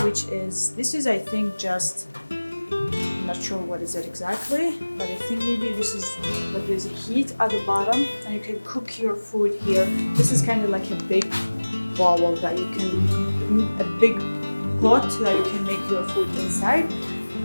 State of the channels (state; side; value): inverted; both; correlation -1.00